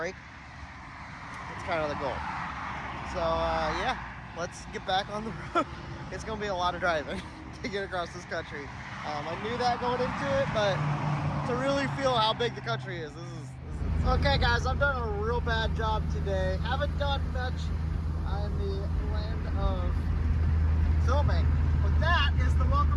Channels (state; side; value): identical; both; correlation 1.00